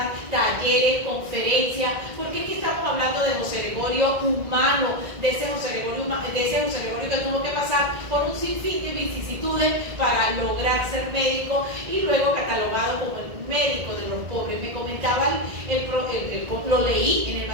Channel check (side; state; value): left; late; 1.8 ms